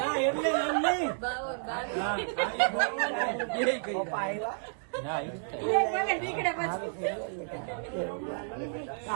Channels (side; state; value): left; silent; digital silence